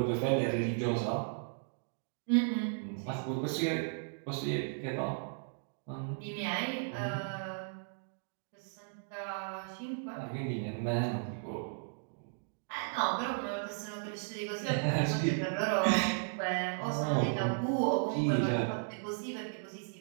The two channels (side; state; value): left; silent; digital silence